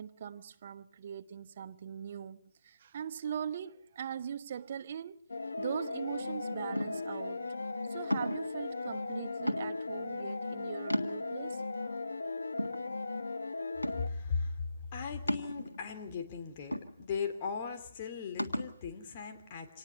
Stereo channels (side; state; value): both; inverted; correlation -0.83